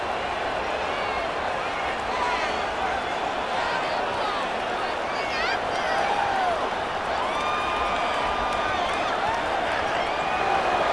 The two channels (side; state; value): both; identical; correlation 1.00